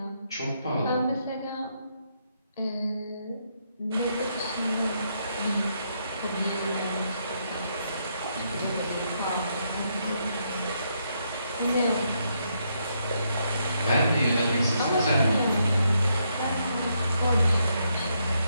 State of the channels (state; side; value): inverted; both; correlation -0.77